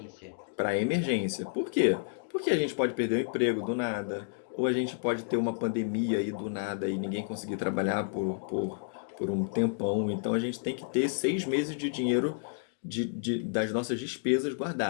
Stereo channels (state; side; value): silent; right; digital silence